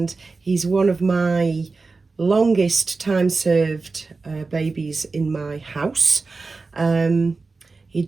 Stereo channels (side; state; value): left; quieter; 4.0 dB